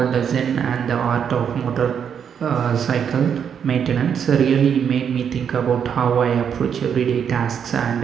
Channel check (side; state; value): left; quieter; 7.8 dB